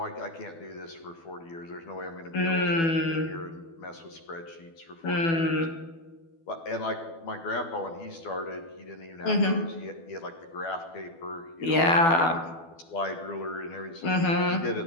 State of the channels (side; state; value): right; late; 12 ms